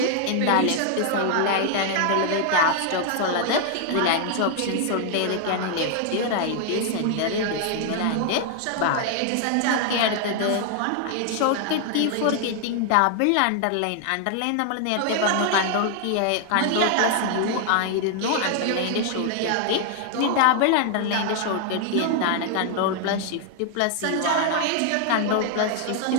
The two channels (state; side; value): different; both; correlation 0.00